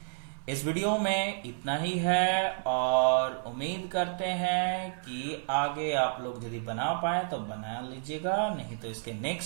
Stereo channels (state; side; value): silent; left; 57 dB below the other